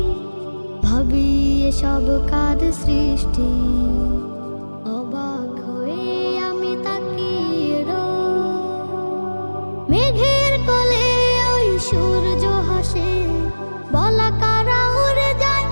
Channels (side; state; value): both; inverted; correlation -1.00